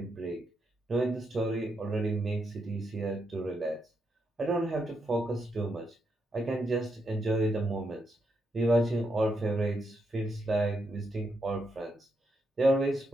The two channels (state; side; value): normal; both; correlation 0.81